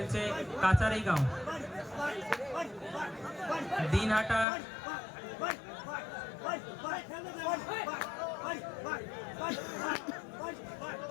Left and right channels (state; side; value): drops out; right; at 4.5 s